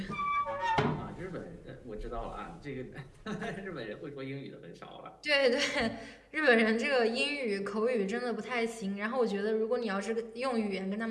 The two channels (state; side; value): identical; both; correlation 1.00